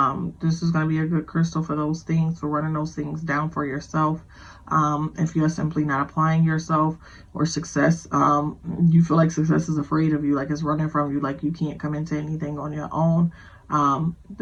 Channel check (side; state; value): both; identical; correlation 1.00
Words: This is going to be a good crystal for those things, for running those things down for yourself. If you're simply not applying yourself, or success, you feel like success is afraid of you, like it's running from you, like you can't come into anything on your own,